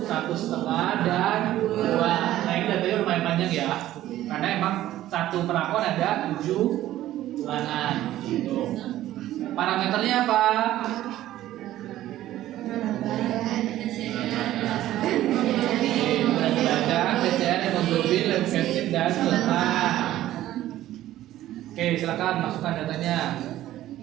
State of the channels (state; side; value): quieter; left; 14.0 dB